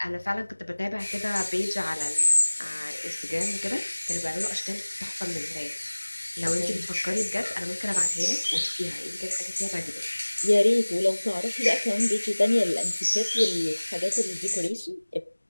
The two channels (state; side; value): inverted; both; correlation -1.00